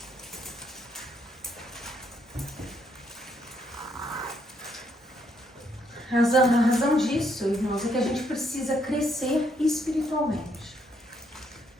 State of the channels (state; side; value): normal; both; correlation 0.73